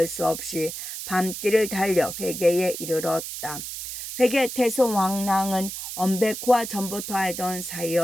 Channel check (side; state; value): right; noise; hiss, 7 dB below the sound